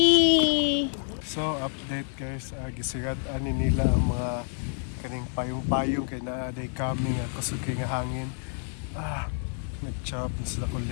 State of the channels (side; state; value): right; silent; 58 dB below the other